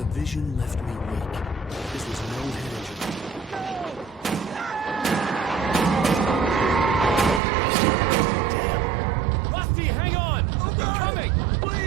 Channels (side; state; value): left; drops out; at 7.4 s